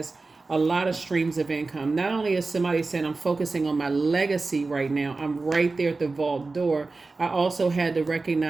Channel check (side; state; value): left; quieter; 3.7 dB